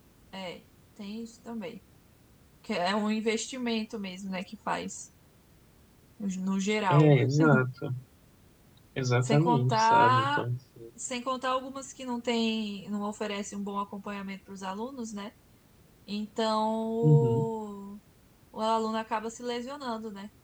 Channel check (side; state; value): both; identical; correlation 1.00